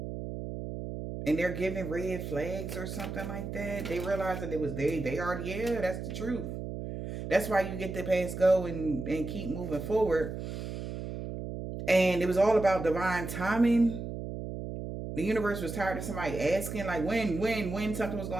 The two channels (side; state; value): right; noise; hum, 6 dB below the sound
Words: And they're giving red flags or something like that. They realize that it was they already, yeah, that's the truth. That's why you get to pass go and keep moving forward. And it was all about divine timing. The universe was tired of somebody asking, like, when something was